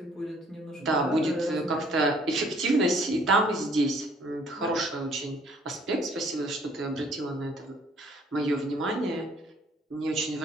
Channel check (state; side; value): normal; both; correlation 0.60